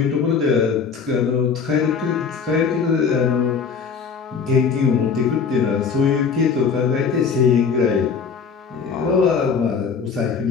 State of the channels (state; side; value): quieter; right; 5.9 dB